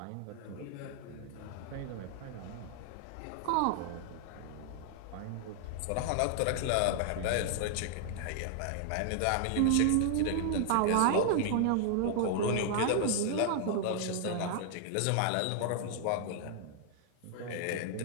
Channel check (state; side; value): different; both; correlation -0.01